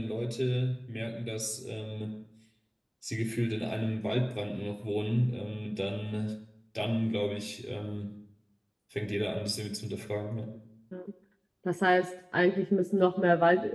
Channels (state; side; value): identical; both; correlation 1.00